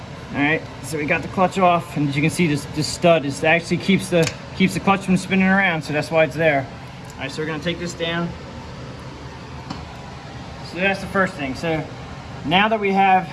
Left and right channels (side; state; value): both; identical; correlation 1.00